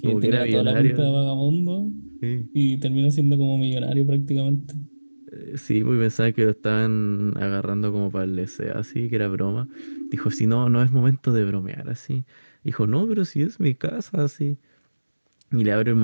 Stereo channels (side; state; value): both; inverted; correlation -1.00